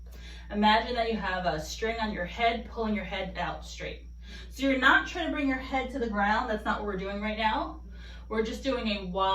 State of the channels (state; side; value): identical; both; correlation 1.00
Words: Imagine that you have a string on your head, pulling your head out straight. So you're not trying to bring your head to the ground. That's not what we're doing right now. We're just doing a